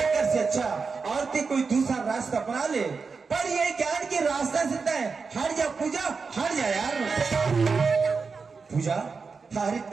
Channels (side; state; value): left; quieter; 4.9 dB